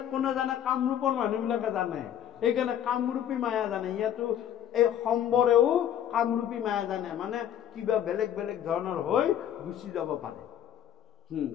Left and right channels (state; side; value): quieter; right; 10.3 dB